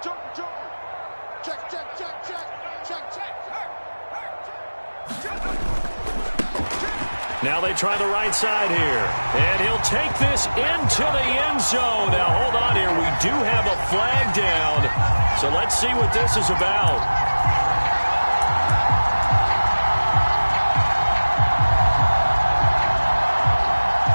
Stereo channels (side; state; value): both; inverted; correlation -1.00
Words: jumper, jumper. Check, check, check, check, check, check. Now they try the right side here. And he'll take this into the end zone. Now hold on here. We do have a flag down. So let's see what this is about.